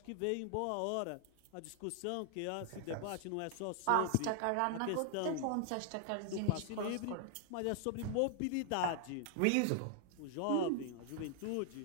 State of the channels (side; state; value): both; different; correlation 0.00